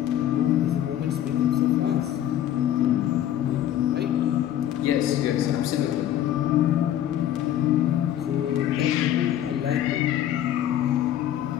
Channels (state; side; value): quieter; right; 11.5 dB